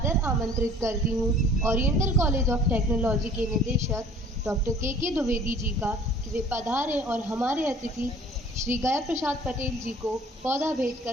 आमंत्रित करती हूँ ओरिएंटल कॉलेज ऑफ टेक्नोलॉजी के निदेशक डॉक्टर के द्विवेदी जी का कि वे पधारें और हमारे अतिथि श्री गया प्रसाद पटेल जी को पौधा भेंट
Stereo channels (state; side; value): normal; both; correlation 0.51